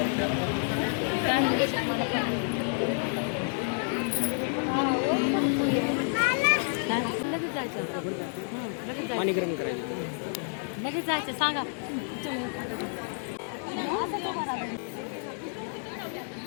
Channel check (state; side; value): silent; right; 57 dB below the other